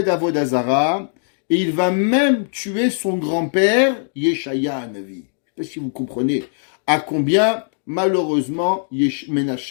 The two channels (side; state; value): right; silent; digital silence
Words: Avodah Zara, et il va même tuer son grand-père, Yeshaya Navi. Je ne sais pas si vous comprenez à combien, malheureusement,